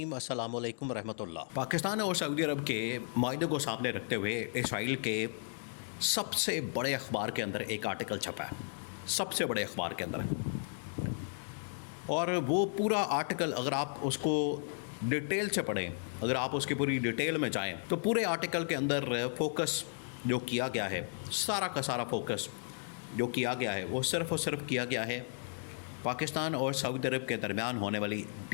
السلام علیکم ورحمۃ اللہ۔ پاکستان اور سعودی عرب کے معاہدے کو سامنے رکھتے ہوئے اسرائیل کے سب سے بڑے اخبار کے اندر ایک آرٹیکل چھپا ہے، سب سے بڑے اخبار کے اندر، اور وہ پورا آرٹیکل اگر آپ اس کو ڈیٹیل سے پڑھیں، اگر آپ اس کی پوری ڈیٹیل میں جائیں تو پورے آرٹیکل کے اندر فوکس جو کیا گیا ہے، سارا کا سارا فوکس جو کیا گیا ہے وہ صرف اور صرف کیا گیا ہے پاکستان اور سعودی عرب کے درمیان ہونے والی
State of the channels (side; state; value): right; silent; digital silence